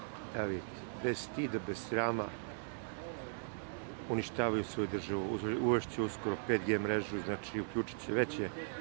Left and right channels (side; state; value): left; silent; 52 dB below the other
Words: Evo vidite, bez stida, bez srama uništavaju svoju državu. Uvešće uskoro 5G mrežu, znači uključit će veće